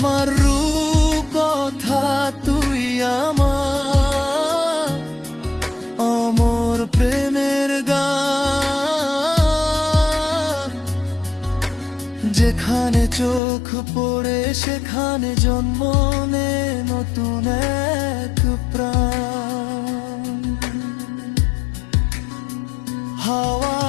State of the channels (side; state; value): right; drops out; at 13.4 s